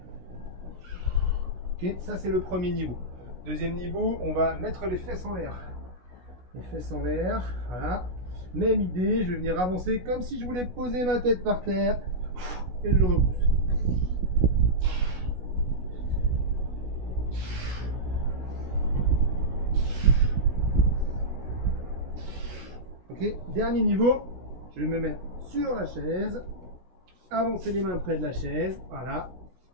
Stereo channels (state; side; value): late; left; 16 ms